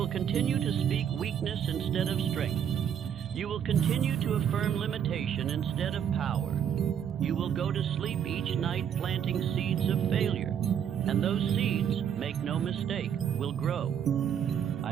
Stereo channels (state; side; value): quieter; left; 8.7 dB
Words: continue to speak weakness instead of strength. You will continue to affirm limitation instead of power. You will go to sleep each night planting seeds of failure, and those seeds, make no mistake, will grow.